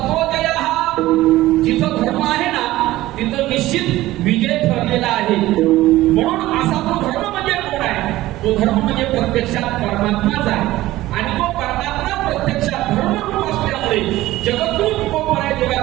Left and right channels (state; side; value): quieter; left; 16.5 dB